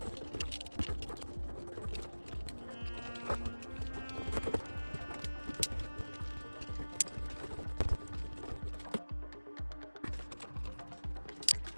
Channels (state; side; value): inverted; both; correlation -1.00